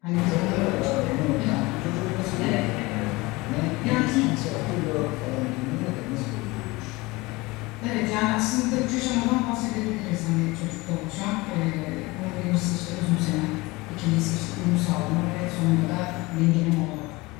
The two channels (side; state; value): right; quieter; 22.7 dB